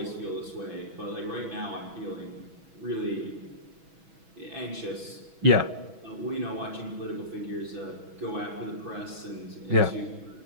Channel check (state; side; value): late; left; 6.1 ms